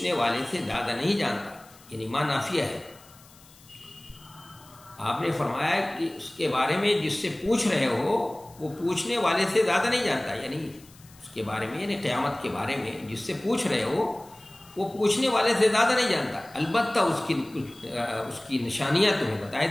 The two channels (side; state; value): left; noise; hiss, 25 dB below the sound